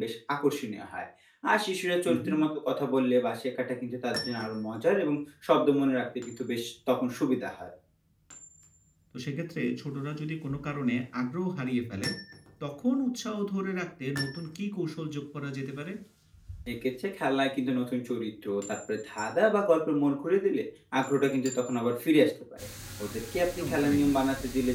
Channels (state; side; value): identical; both; correlation 1.00